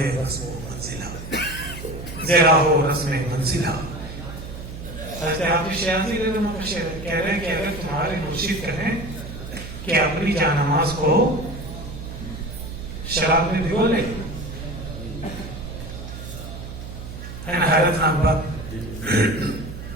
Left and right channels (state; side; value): noise; right; hum, 10 dB below the sound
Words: रस्म मंजिला, ज़रा हो रस्म मंजिला। हाफिज शिराज़ी कह रहे हैं कि अगर तुम्हारे मुर्शिद कहें कि अपनी जानमाज को शराब में भिगो ले, है ना, हैरतनाक बात।